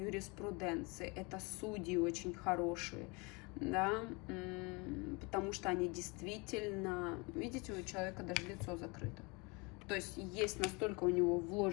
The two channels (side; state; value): right; quieter; 28.6 dB